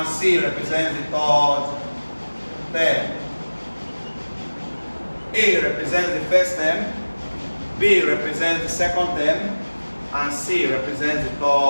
c represents the third term. A represents the first term, b represents the second term, and c represents the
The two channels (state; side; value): inverted; both; correlation -1.00